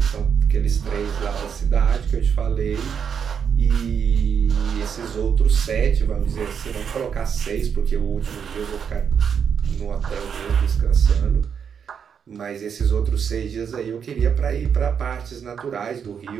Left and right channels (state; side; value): quieter; left; 7.2 dB